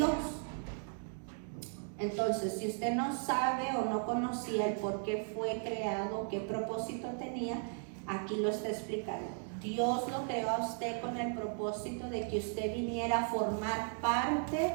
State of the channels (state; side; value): silent; left; 54 dB below the other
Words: Entonces, si usted no sabe o no conocía el por qué fue creado, qué propósito tenía, aquí lo está explicando. Dios lo creó a usted con el propósito de que usted viniera a formar parte